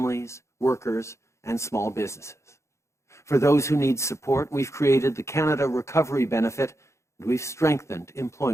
workers, and small businesses. For those who need support, we've created the Canada Recovery Benefit, and we've strengthened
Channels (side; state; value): right; late; 0.14 ms